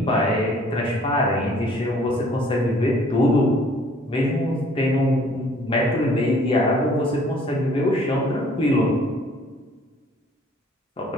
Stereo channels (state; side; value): normal; both; correlation 0.57